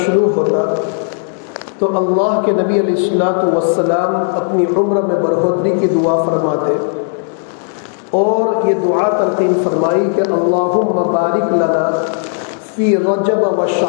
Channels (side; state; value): right; silent; digital silence